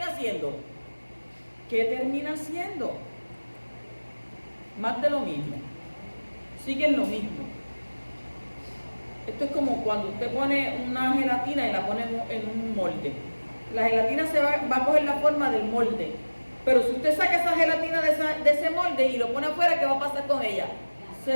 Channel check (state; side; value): inverted; both; correlation -1.00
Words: haciendo? ¿Qué termina haciendo? Más de lo mismo. Siguen lo mismo. Esto es como cuando usted pone una gelatina y la pone en un molde. La gelatina va a coger la forma del molde. Pero si usted saca esa gelatina de ese molde y lo pone afuera, ¿qué va a pasar con ella? Se